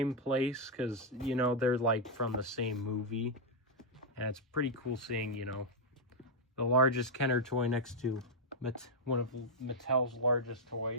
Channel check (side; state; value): both; normal; correlation -0.03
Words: place, because, you know, they're like from the same movie. And it's pretty cool seeing, you know, the largest Kenner toy next to one of Mattel's largest